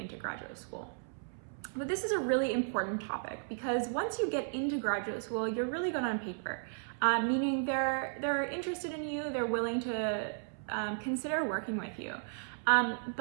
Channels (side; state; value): left; silent; 55 dB below the other